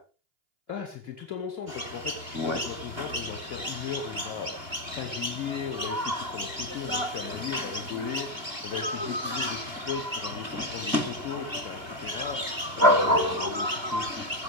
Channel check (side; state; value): left; late; 2.3 ms